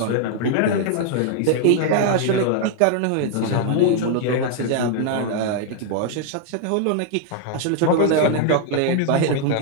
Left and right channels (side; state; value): both; different; correlation 0.00